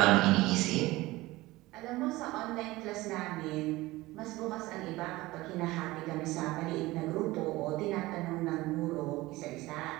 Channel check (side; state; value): left; quieter; 19.3 dB